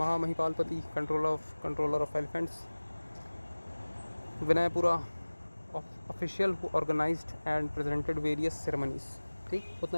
controller of elephants. Vinayapura, official who organized and presented various ceremonies. ठीक,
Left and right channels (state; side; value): inverted; both; correlation -1.00